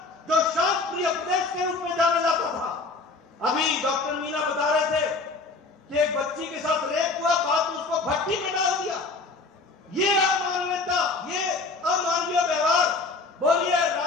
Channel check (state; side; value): quieter; right; 3.8 dB